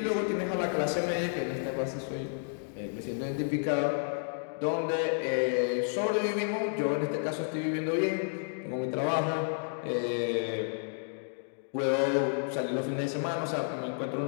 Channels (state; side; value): silent; right; digital silence